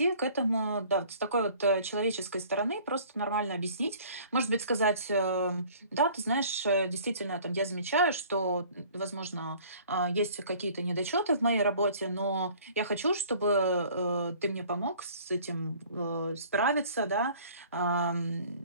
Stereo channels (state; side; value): inverted; both; correlation -0.51